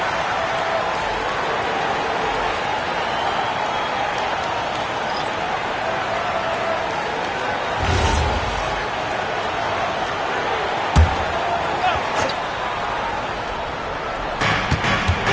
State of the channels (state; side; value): identical; both; correlation 1.00